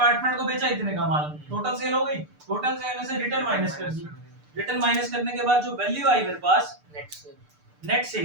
को बेचा इतने का माल, टोटल सेल हो गई। टोटल सेल में से रिटर्न माइनस कर दी, रिटर्न माइनस करने के बाद जो वैल्यू आई मेरे पास नेट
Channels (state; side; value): late; left; 6.7 ms